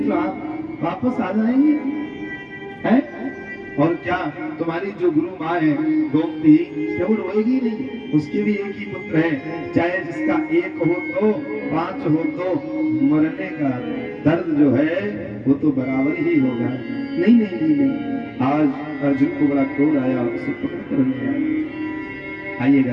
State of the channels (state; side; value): identical; both; correlation 1.00